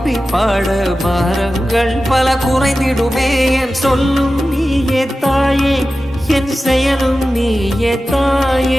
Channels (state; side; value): normal; both; correlation 0.94